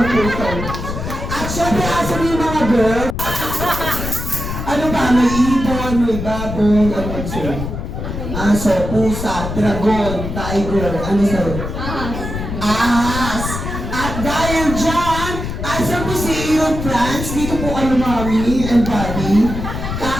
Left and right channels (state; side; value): noise; left; rumble, 5 dB below the sound